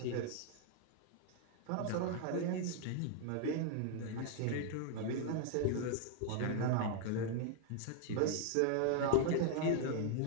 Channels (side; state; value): both; different; correlation 0.00